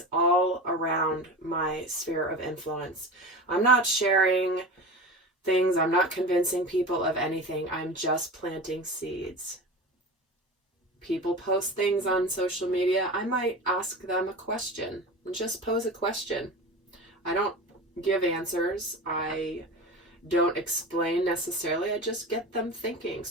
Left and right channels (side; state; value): both; normal; correlation 0.30